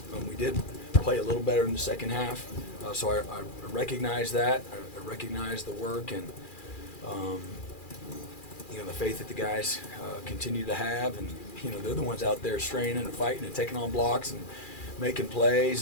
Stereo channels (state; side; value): late; right; 2.4 ms